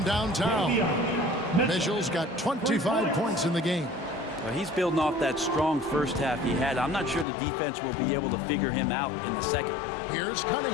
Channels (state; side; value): drops out; right; at 7.2 s